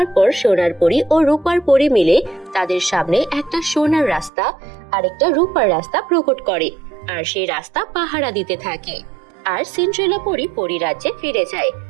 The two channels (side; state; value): left; drops out; at 4.3 s